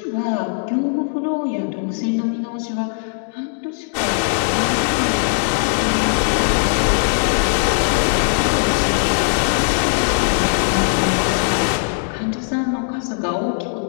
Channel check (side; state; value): right; silent; digital silence